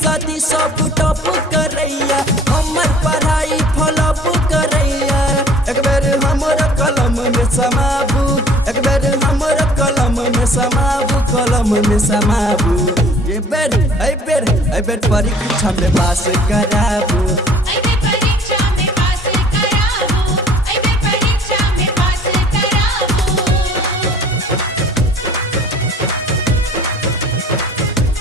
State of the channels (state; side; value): normal; both; correlation 0.51